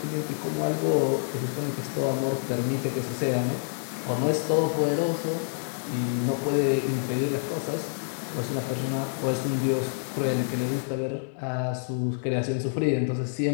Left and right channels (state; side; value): silent; right; digital silence